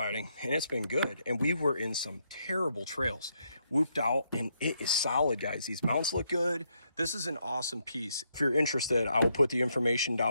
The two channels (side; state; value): both; inverted; correlation -0.77